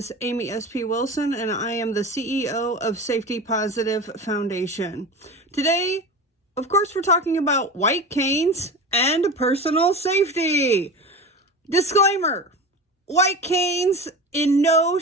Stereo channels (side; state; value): both; normal; correlation 0.29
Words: Amy S.P. Wilson, and I am the CEO of Safety Positive Foundation. Today, of course, we're talking about white canes and personal safety. Disclaimer, white canes in no